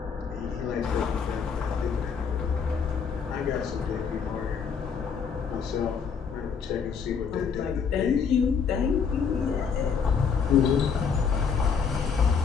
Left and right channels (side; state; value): right; quieter; 6.2 dB